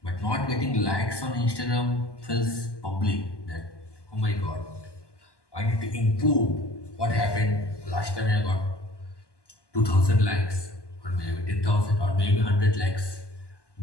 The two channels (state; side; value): late; right; 1.2 ms